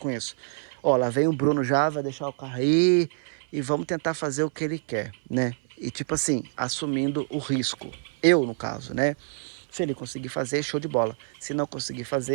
isso? Ó, lá vem o Bruno já, vai deixar o carro aí e vamos tentar fazer o que ele quer, né? E tipo assim, assumindo o risco. Eu, no caso, né? Se ele conseguir fazer, show de bola. Se não conseguir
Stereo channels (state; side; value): silent; left; 59 dB below the other